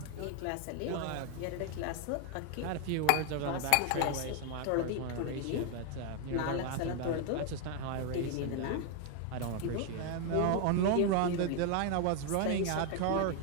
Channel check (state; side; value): different; both; correlation 0.01